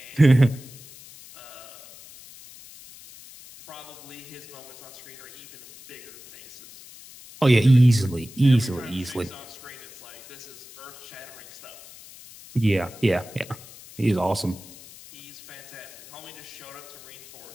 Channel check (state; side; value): noise; left; hiss, 18 dB below the sound